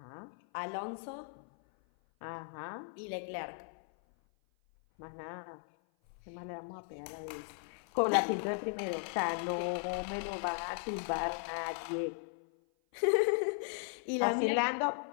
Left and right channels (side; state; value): right; silent; 53 dB below the other